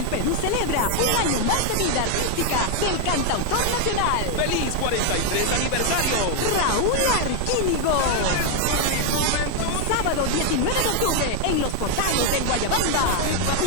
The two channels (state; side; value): different; both; correlation 0.01